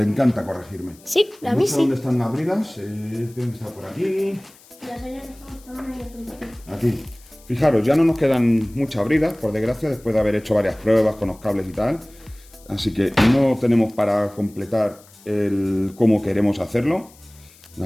corregirme. Sí, a no mí sé sí. dónde están las bridas, tienen que estar por aquí. Las hayas dejado estaban ahí al principio. Aquí. Fijaros, ya no nos quedan muchas bridas, por desgracia, después de haber hecho varias pruebas con los cables y tal. Así que no tenemos para completar el cómo queremos hacerlo, ¿de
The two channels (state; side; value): noise; left; hiss, 25 dB below the sound